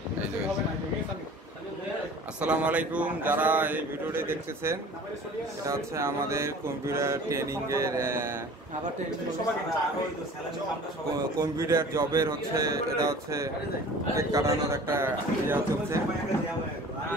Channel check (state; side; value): normal; both; correlation 0.44